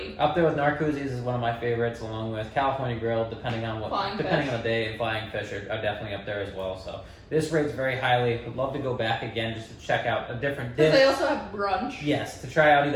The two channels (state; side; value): identical; both; correlation 1.00